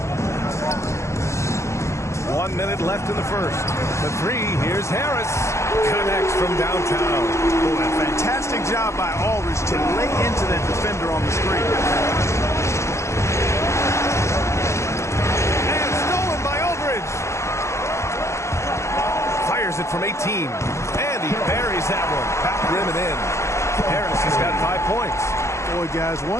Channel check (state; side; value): late; right; 0.14 ms